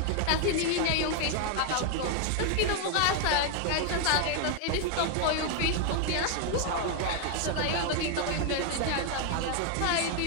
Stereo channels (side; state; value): both; different; correlation 0.00